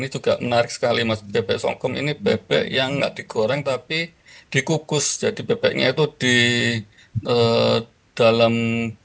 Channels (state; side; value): identical; both; correlation 1.00